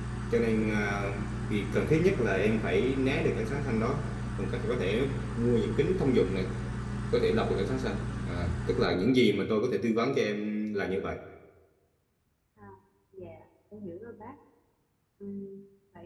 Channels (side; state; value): both; identical; correlation 1.00